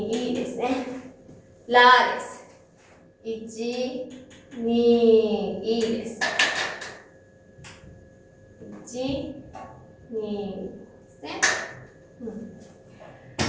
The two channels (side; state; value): both; identical; correlation 1.00